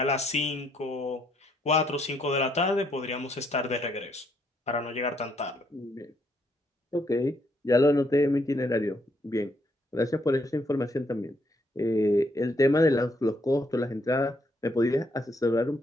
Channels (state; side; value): normal; both; correlation 0.73